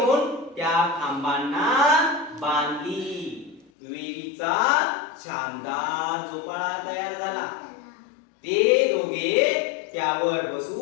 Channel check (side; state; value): right; drops out; at 3.7 s